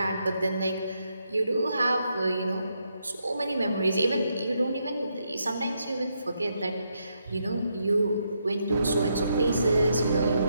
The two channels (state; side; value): inverted; both; correlation -0.79